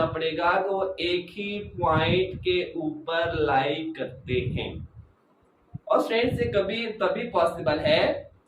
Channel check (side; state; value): both; identical; correlation 1.00